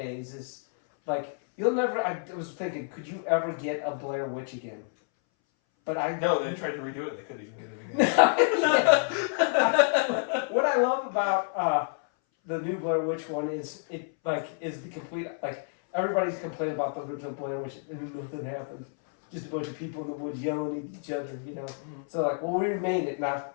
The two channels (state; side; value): silent; right; 59 dB below the other